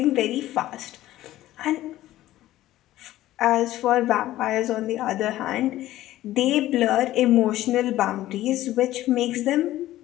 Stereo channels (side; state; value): right; quieter; 14.9 dB